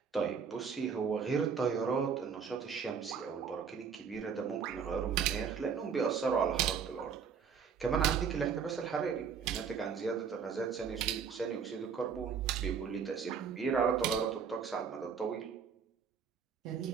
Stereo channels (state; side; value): quieter; left; 6.6 dB